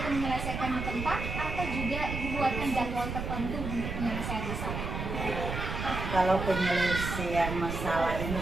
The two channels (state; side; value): noise; right; rumble, 4 dB below the sound